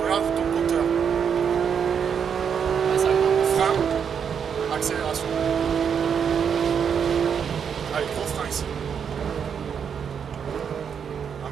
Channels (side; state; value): left; quieter; 7.3 dB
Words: regarde ton compteur. Frein, accélération. Allez, gros frein ici.